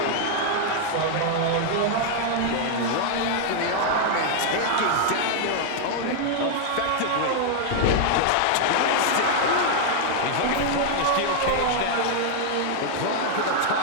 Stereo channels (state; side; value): different; both; correlation 0.00